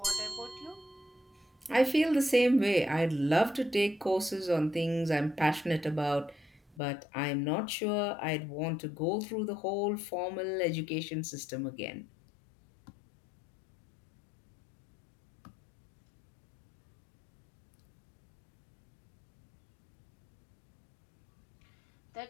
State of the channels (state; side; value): drops out; right; at 6.8 s